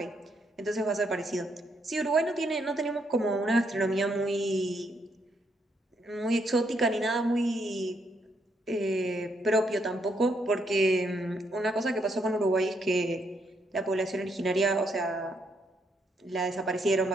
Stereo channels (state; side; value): normal; both; correlation 0.75